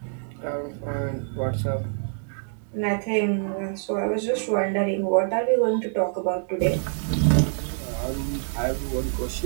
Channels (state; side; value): silent; left; 60 dB below the other